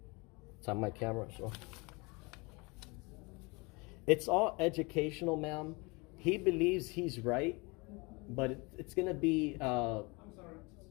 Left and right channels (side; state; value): right; quieter; 27.3 dB